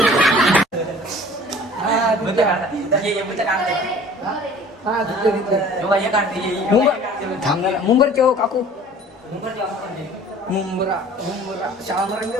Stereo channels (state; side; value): normal; both; correlation 0.47